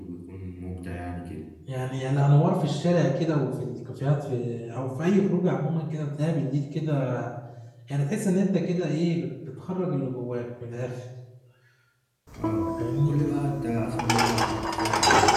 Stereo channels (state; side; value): identical; both; correlation 1.00